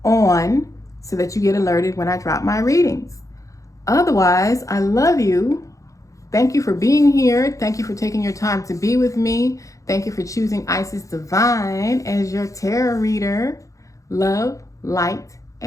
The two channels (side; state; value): right; late; 0.16 ms